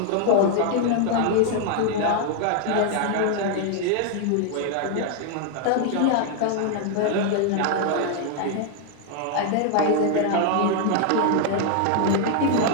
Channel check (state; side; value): different; both; correlation 0.00